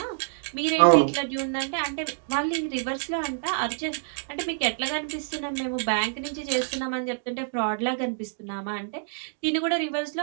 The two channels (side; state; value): left; silent; digital silence